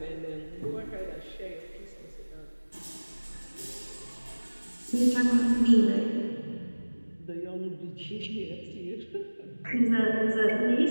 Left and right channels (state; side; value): inverted; both; correlation -1.00